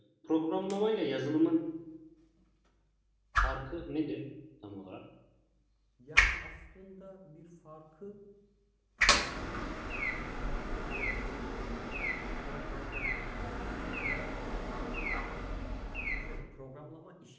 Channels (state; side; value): identical; both; correlation 1.00